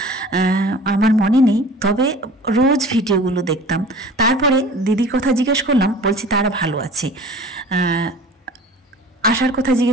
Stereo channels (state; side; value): normal; both; correlation 0.43